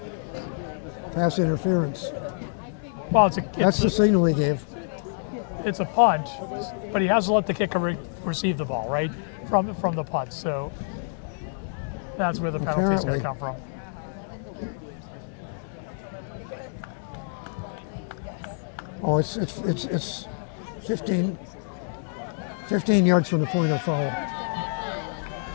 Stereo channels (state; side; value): silent; right; digital silence